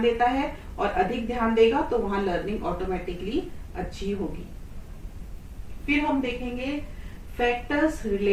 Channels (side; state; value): both; identical; correlation 1.00